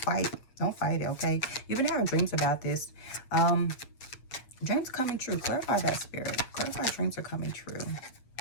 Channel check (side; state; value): right; late; 8.1 ms